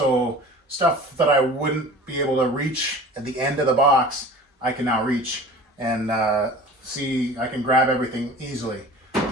stuff that I wouldn't be able to reach at the end of the box, I can now reach and see, I can grab everything easily.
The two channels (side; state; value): both; normal; correlation 0.41